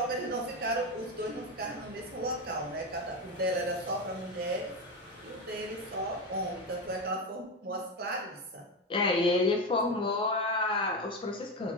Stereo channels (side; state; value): both; normal; correlation 0.15